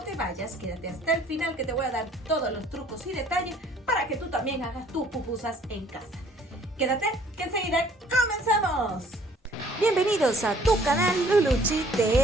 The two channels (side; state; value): both; normal; correlation 0.57